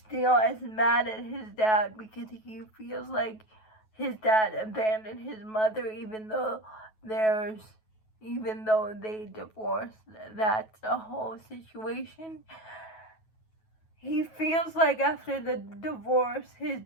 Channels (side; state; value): right; late; 9.3 ms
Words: is mad at his dad because he feels like his dad abandoned his mother, even though they divorced. That's a whole situation. He feels like after the divorce, his